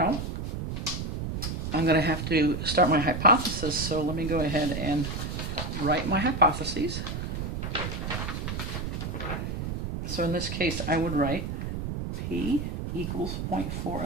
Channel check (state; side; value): noise; right; rumble, 4 dB below the sound